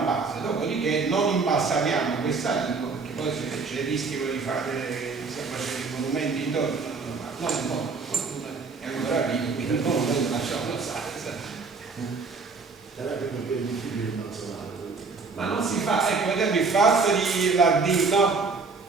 base, dopodiché non imbalsamiamo questa lingua, perché poi c'è il rischio di fare, stiamo facendo i monumenti intorno, non un po', fortuna è ancora vivo, quindi il monumento lasciamo stare. Ma non si fa, ecco, per esempio il fatto di la D, no?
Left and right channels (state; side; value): quieter; left; 4.4 dB